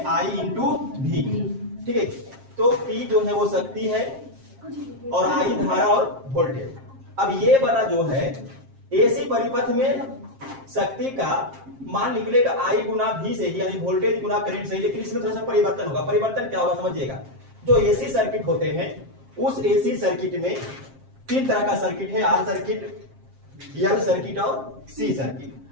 I इंटू V। ठीक है, तो P जो है वो शक्ति है और I धारा और वोल्टेज। अब ये वाला जो है एसी परिपथ में शक्ति का मान निकलेगा I गुना V से, यानी वोल्टेज गुना करंट से, लेकिन इसमें थोड़ा सा परिवर्तन होगा। परिवर्तन क्या होगा समझिएगा, जो एसी सर्किट होते हैं उस एसी सर्किट में तीन तरह का सर्किट है, आर सर्किट, एल सर्किट और सी सर्किट।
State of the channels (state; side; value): late; left; 7.5 ms